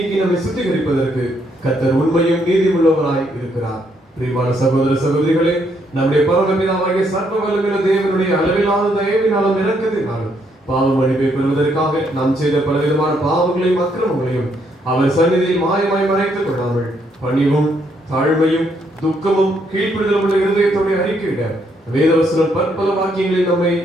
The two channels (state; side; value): normal; both; correlation 0.73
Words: நம்மை சுத்திகரிப்பதற்கு கர்த்தர் உண்மையும் நீதியுள்ளவராய் இருக்கிறார். பிரியமான சகோதர சகோதரிகளே, நம்முடைய பரமபிதாவாகிய சர்வ வல்லமையுள்ள தேவனுடைய அளவிலான தயவினாலும் இரக்கத்தினாலும் பாவ மன்னிப்பை பெறுவதற்காக நாம் செய்த பலவிதமான பாவங்களையும் அக்கிரமங்களையும் அவர் சந்நிதியில் மாயமாய் மறைத்துக் கொள்ளாமல் பணிவும் தாழ்மையும் துக்கமும் கீழ்ப்படுதலும் உள்ள இருதயத்தோடு அறிக்கையிட வேதவசனம் பற்பல வாக்கியங்களில் நம்மை